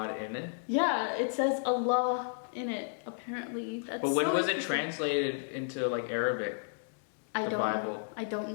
in it? Yeah, it says Allah in it, apparently. That's But when so was it interesting. translated into like Arabic? I the don't Bible? know. I don't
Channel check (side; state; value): right; silent; digital silence